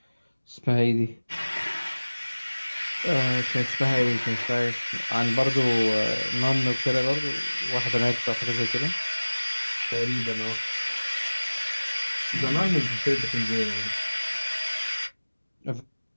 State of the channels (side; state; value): both; inverted; correlation -1.00